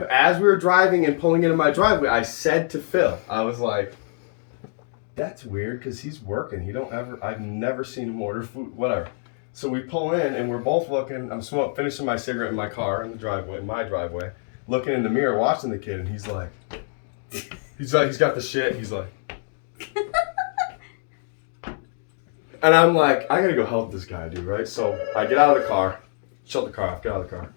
we were driving and pulling into my driveway, I said to Phil, I was like, "That's weird because he's working. I've never seen him order food. Whatever." So we pull in and we're both looking. I'm finishing my cigarette in my car in my driveway, looking in the mirror, watching the kid, and he's got the shit. He's like, and I'm like, I gotta go help this guy, dude, right? So I get out of the car, shut the car off, get out of the car.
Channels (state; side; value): silent; right; digital silence